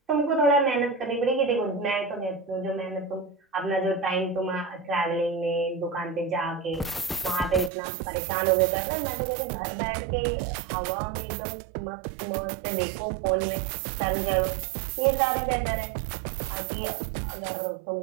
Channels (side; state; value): left; drops out; at 7.7 s